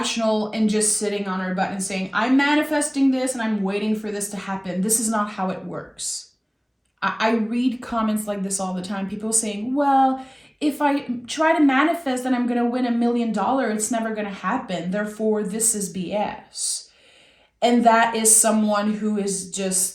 and just sitting on our butt and saying, I'm manifesting this and I'm waiting for this to happen. This is not how it works. I read comments like this all the time. People saying, well, if I try to manifest that I'm going to win $1 million, it's never going to happen. Therefore, this is BS. And that is someone who is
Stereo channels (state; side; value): identical; both; correlation 1.00